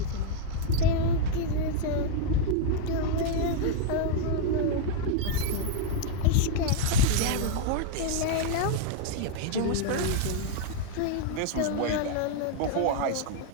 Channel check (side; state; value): both; different; correlation 0.00